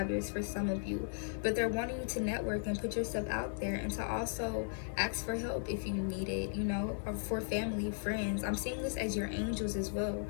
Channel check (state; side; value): silent; right; 53 dB below the other